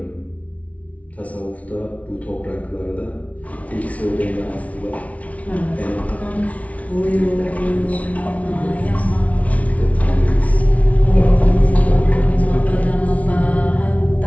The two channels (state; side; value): late; right; 0.067 ms